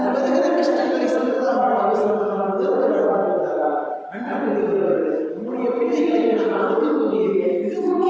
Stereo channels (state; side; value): identical; both; correlation 1.00